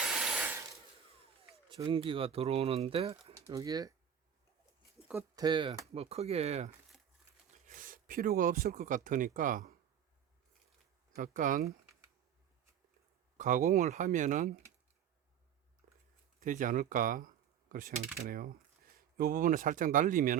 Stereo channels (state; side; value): quieter; left; 8.9 dB